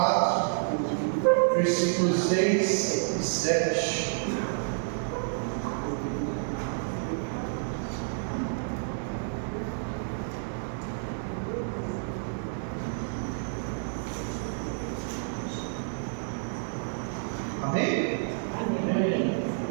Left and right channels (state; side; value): silent; left; digital silence